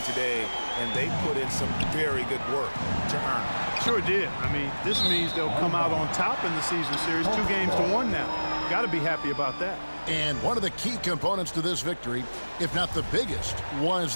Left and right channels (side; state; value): both; inverted; correlation -1.00